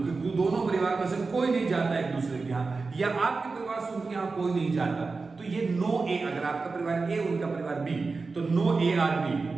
कि दोनों परिवार में से कोई नहीं जाता एक दूसरे के यहाँ, या आपके परिवार से उनके यहाँ कोई नहीं जाता, तो ये नो ए, अगर आपका परिवार ए उनका परिवार बी, तो नो ए आर बी,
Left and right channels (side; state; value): left; quieter; 4.1 dB